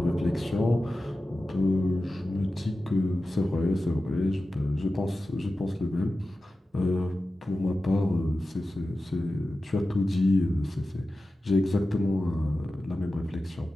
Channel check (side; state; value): both; normal; correlation 0.94